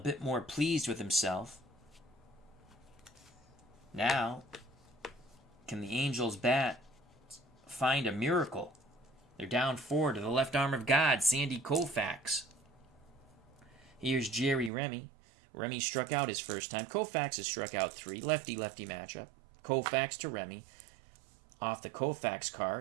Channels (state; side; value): drops out; left; at 14.7 s